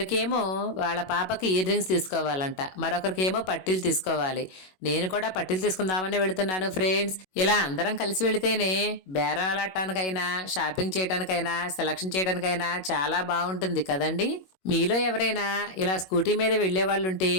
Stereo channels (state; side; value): late; right; 21 ms